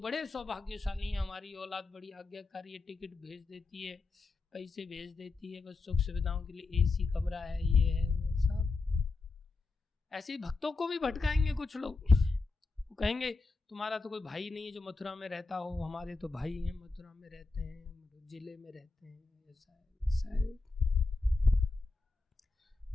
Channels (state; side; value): quieter; right; 3.8 dB